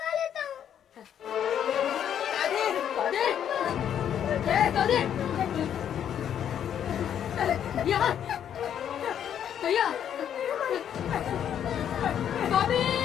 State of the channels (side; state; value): right; quieter; 9.4 dB